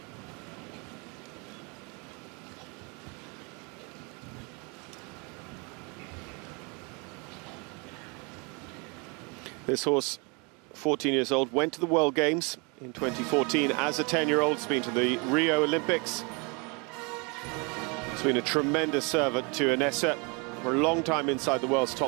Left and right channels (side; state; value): left; quieter; 31.2 dB